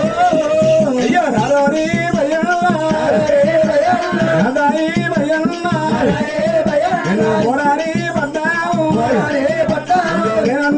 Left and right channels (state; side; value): identical; both; correlation 1.00